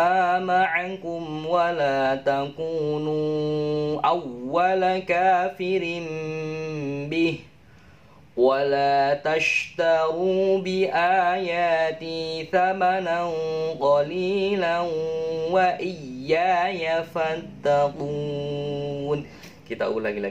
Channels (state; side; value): identical; both; correlation 1.00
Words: معكم ولا تكونوا أول كافر به ولا تشتروا بآياتي ثمنا قليلا وإياي فاتقون. Kita ulangi